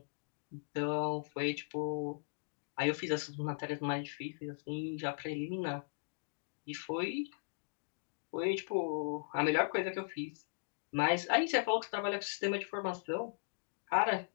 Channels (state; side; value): silent; right; digital silence